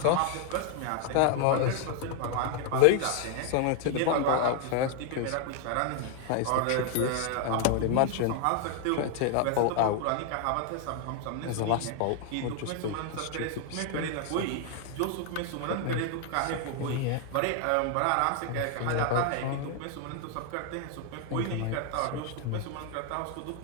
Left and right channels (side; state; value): both; different; correlation 0.00